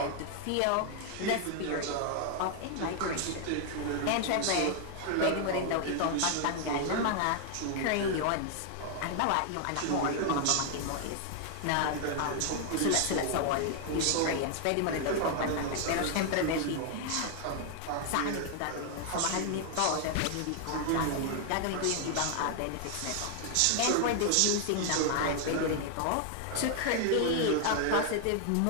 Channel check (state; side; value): different; both; correlation 0.00